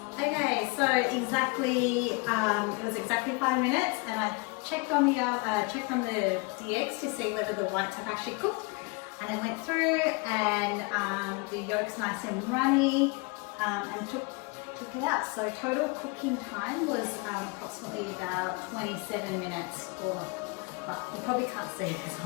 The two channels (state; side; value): quieter; right; 28.6 dB